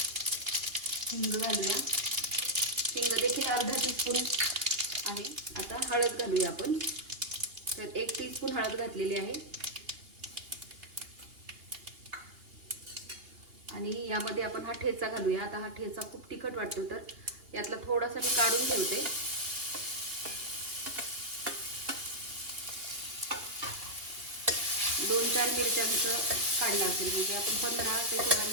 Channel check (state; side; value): late; left; 2.8 ms